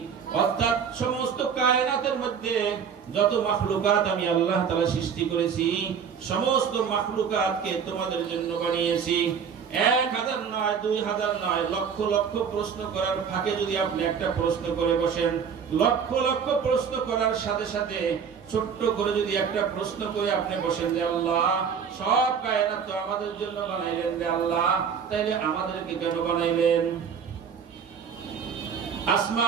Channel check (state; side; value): quieter; left; 7.0 dB